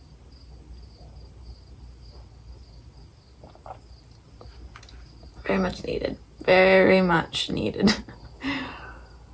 Very much needed. Very much needed.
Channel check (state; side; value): identical; both; correlation 1.00